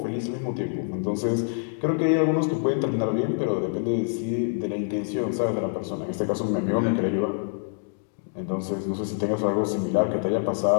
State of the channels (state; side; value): silent; right; digital silence